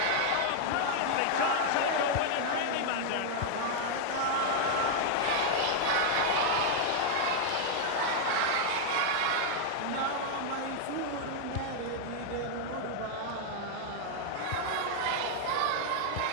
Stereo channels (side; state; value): both; different; correlation 0.00